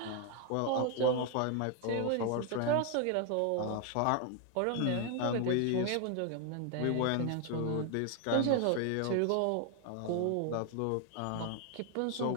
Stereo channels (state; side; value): different; both; correlation 0.00